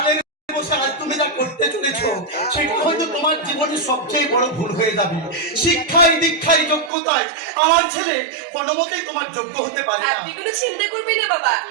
বসে আজ তুমি যা করতে চলেছো সেটা হয়তো তোমার জীবনের সবচেয়ে বড় ভুল হয়ে যাবে। শিক্ষায় দীক্ষায় যোগ্যতায় আমার ছেলে কোনোমতেই তোমার যোগ্য হতে পারে না। আপনি কোনো চিন্তা করবেন না বাবা,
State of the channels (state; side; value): drops out; left; at 6.9 s